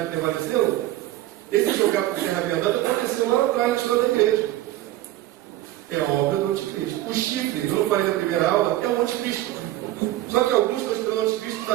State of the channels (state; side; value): quieter; left; 15.1 dB